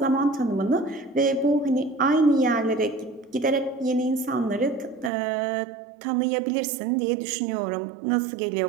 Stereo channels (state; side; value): drops out; left; at 5.1 s